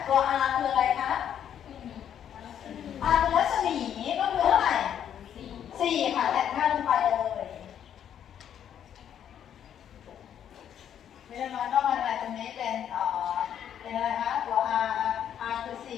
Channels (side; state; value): right; quieter; 9.5 dB